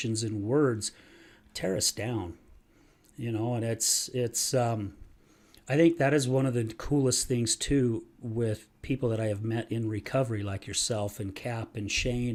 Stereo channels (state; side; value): identical; both; correlation 1.00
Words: and words tear us down, you know, and it's I think that is one of the coolest things, too, with people that I have met in recovery, like yourself and Cap and